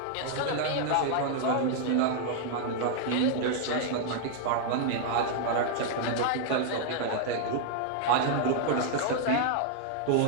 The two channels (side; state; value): both; different; correlation 0.00